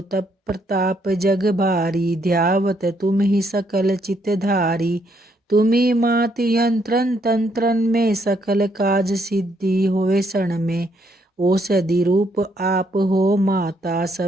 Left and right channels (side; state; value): both; normal; correlation 0.72